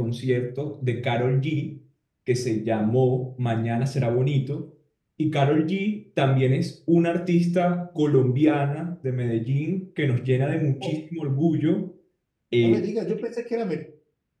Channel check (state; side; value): identical; both; correlation 1.00